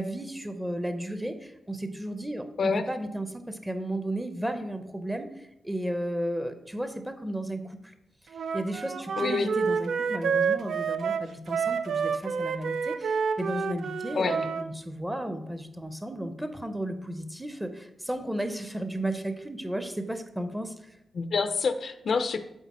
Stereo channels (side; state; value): both; normal; correlation 0.85